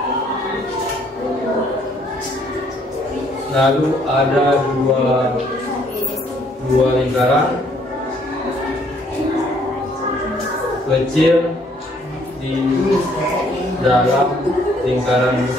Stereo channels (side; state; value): both; normal; correlation 0.64